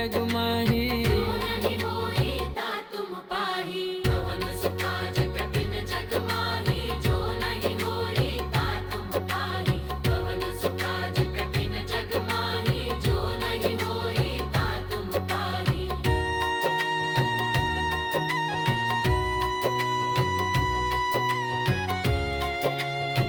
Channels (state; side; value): identical; both; correlation 1.00